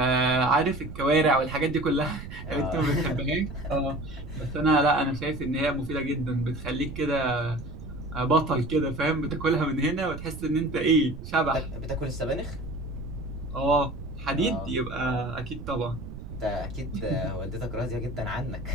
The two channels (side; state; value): right; noise; rumble, 11 dB below the sound